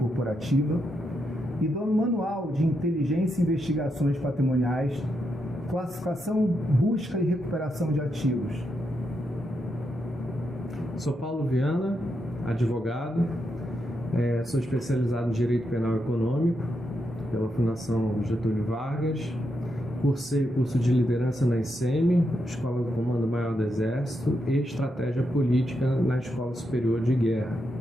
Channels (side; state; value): both; normal; correlation 0.83